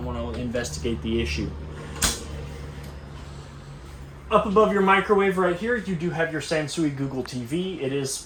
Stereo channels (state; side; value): identical; both; correlation 1.00